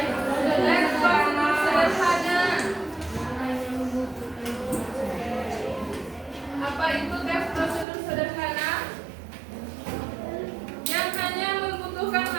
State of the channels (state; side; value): drops out; left; at 7.9 s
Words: prosedur sederhana. Apa itu teks prosedur sederhana? Yang hanya membutuhkan